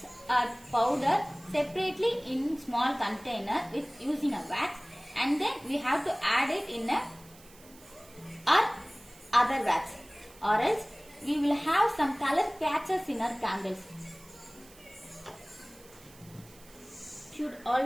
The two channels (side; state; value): right; noise; hiss, 23 dB below the sound